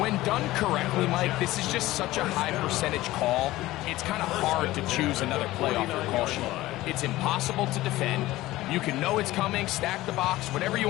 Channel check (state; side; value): quieter; right; 17.1 dB